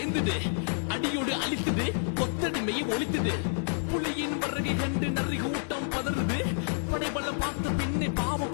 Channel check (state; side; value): silent; right; digital silence